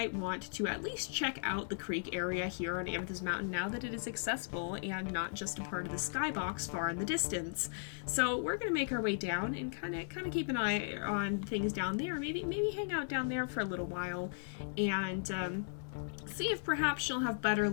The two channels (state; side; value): silent; right; digital silence